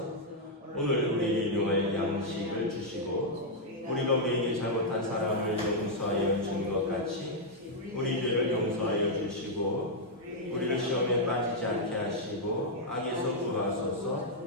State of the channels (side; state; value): both; normal; correlation -0.04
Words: 오늘 우리에게 일용할 양식을 주시고 우리가 우리에게 잘못한 사람을 용서하여 준 것 같이 우리 죄를 용서하여 주시고 우리를 시험에 빠지지 않게 하시고 악에서 구하소서.